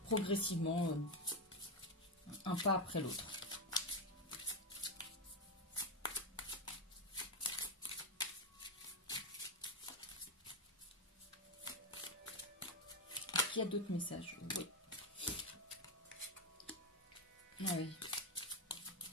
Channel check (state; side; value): normal; both; correlation 0.08